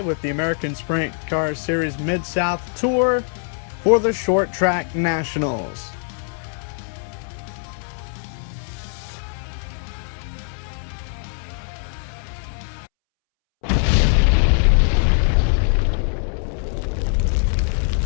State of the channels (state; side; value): silent; right; 64 dB below the other